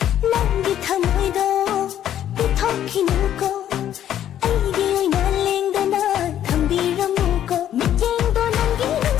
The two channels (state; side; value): quieter; right; 10.9 dB